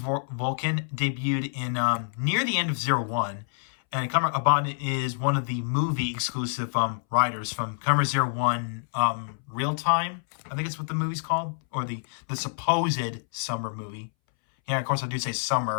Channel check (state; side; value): silent; right; 60 dB below the other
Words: debuted in near the end of 01, and Kamen Abaddon is one of the movie exclusive riders from Kamen 01 Real Time. I think it's what the movie's called, or the supposed summer movie. Yeah, of course, I do say